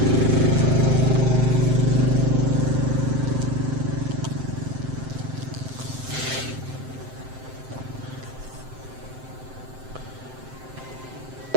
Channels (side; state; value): left; late; 7.7 ms